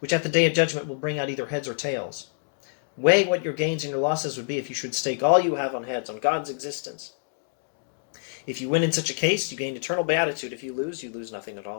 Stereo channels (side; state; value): right; silent; digital silence